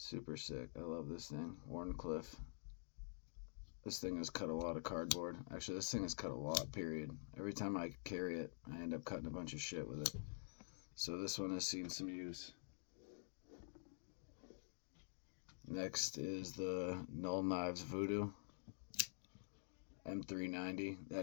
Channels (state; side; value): silent; right; digital silence